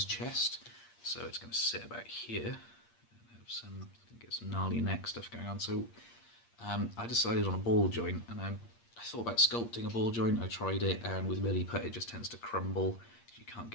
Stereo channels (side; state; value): right; late; 8.6 ms